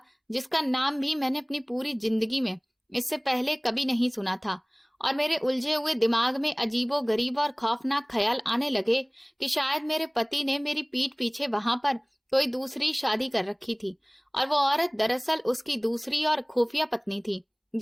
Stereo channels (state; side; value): identical; both; correlation 1.00